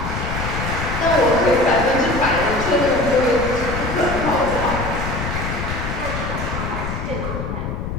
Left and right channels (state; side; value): noise; left; rumble, 4 dB below the sound